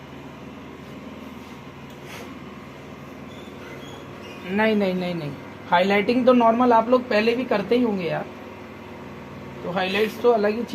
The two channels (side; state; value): both; identical; correlation 1.00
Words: नहीं, हाइलाइटिंग तो नॉर्मल आप लोग पहले भी करते ही होंगे यार, तो हाइलाइट्स तो अलग ही